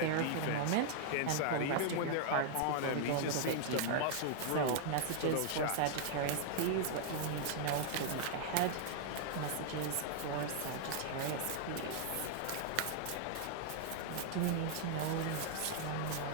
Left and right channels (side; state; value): both; different; correlation -0.01